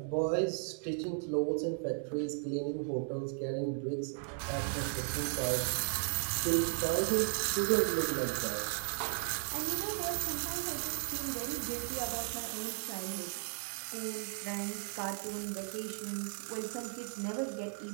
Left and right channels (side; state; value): left; silent; digital silence